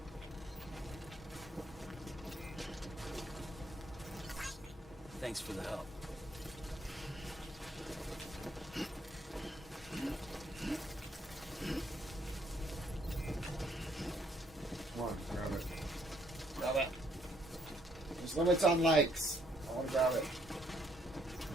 Thanks for the help. Come on, grab it. Grab it. There's limits on likes. I want to grab it.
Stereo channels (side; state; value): both; normal; correlation 0.69